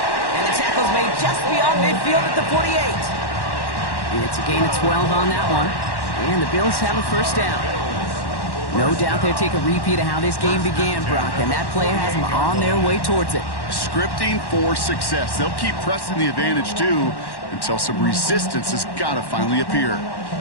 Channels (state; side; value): late; right; 1.1 ms